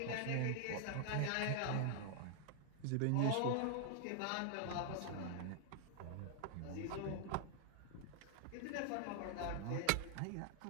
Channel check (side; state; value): both; different; correlation -0.01